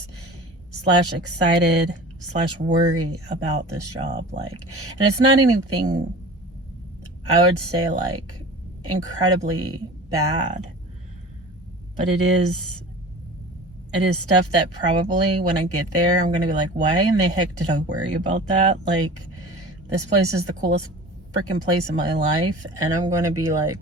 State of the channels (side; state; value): both; normal; correlation 0.39